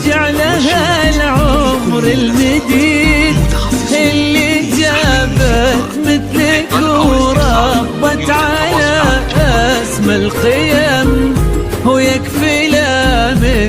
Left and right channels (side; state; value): both; identical; correlation 1.00